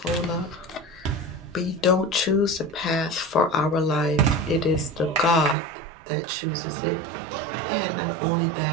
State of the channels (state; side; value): drops out; left; at 5.6 s